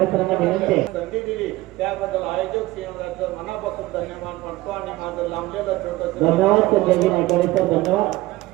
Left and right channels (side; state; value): left; quieter; 18.2 dB